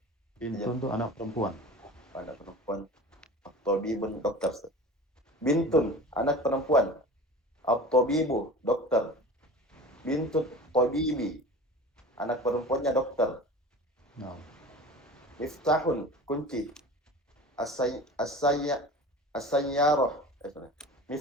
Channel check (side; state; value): both; normal; correlation 0.37